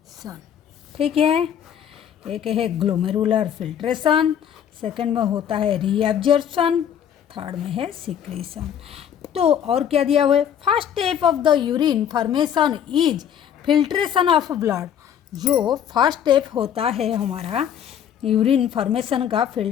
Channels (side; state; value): right; quieter; 9.1 dB